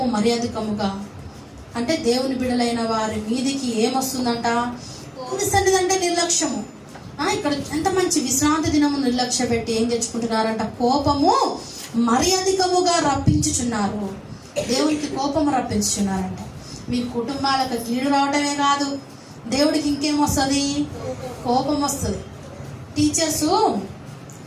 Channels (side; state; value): both; identical; correlation 1.00